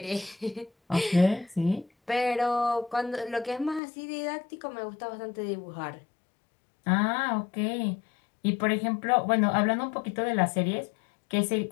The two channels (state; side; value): drops out; right; at 3.8 s